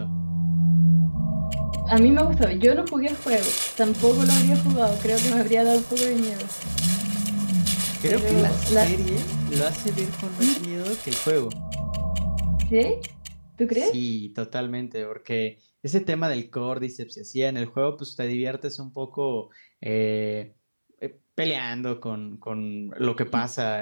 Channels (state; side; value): inverted; both; correlation -1.00